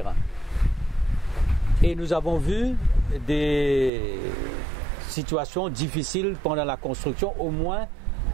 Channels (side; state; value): left; drops out; at 3.9 s